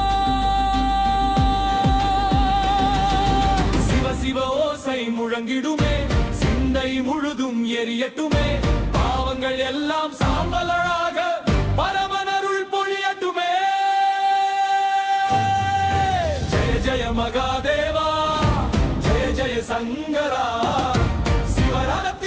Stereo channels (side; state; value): both; identical; correlation 1.00